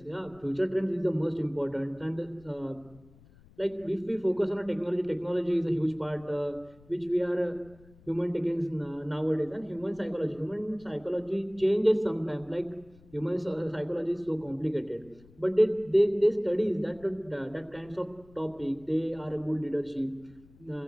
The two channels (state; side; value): noise; left; rumble, 25 dB below the sound